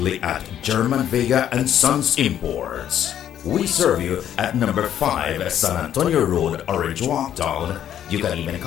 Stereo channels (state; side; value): quieter; right; 10.4 dB